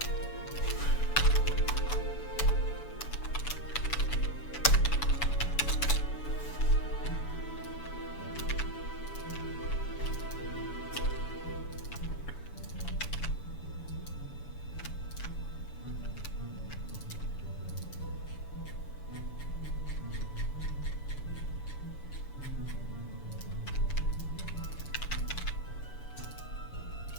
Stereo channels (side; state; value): right; late; 7.0 ms